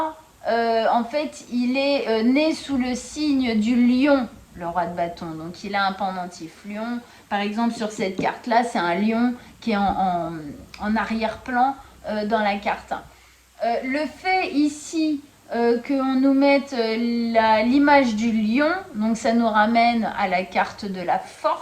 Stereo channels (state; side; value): identical; both; correlation 1.00